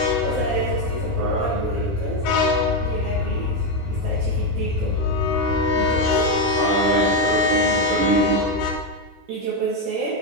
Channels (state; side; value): normal; both; correlation 0.07